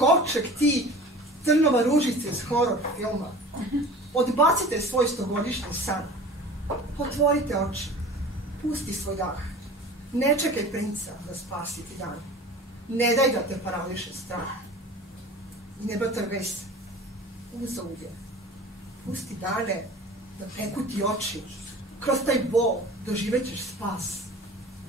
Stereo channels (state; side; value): normal; both; correlation 0.40